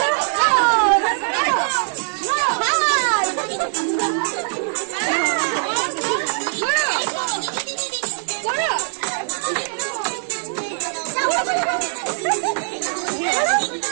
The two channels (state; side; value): silent; left; digital silence